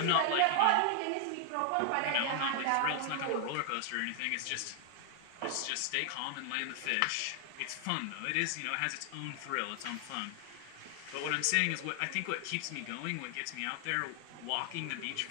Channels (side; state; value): both; different; correlation 0.00